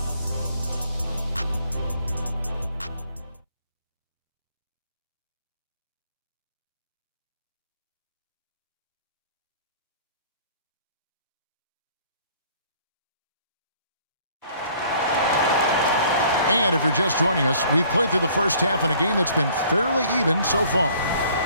And if you're just joining us, we've played through the first half in a game that's been fairly even so far.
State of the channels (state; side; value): inverted; both; correlation -0.57